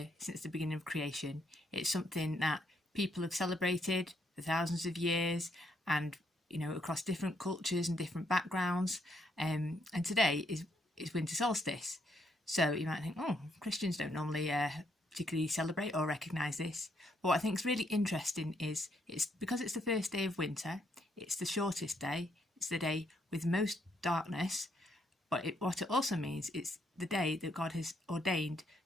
since the beginning of creation. It's something that people have celebrated for thousands of years and across different cultures and different backgrounds. And today is winter solstice. So you might think, oh, Christians don't normally particularly celebrate or recognise this. But what I think is really interesting is it's because it's the first day of winter, it's the shortest day, it's the day with most darkness, but what it also means it's the day that God has ordained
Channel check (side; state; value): both; normal; correlation 0.74